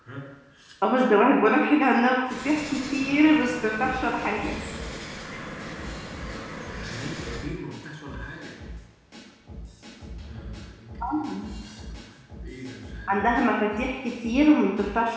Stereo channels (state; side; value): identical; both; correlation 1.00